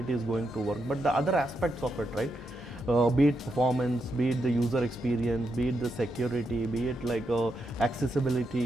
is going to work. But the other aspects of it, right? be it performance, be it the user experience, be it the security, be it like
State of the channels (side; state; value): both; normal; correlation 0.83